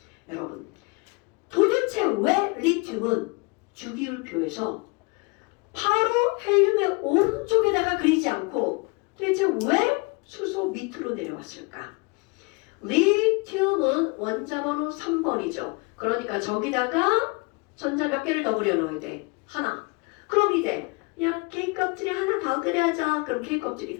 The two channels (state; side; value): quieter; right; 28.7 dB